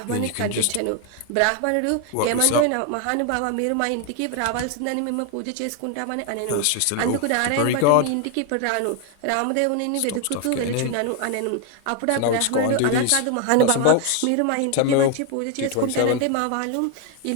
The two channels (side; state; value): both; different; correlation 0.01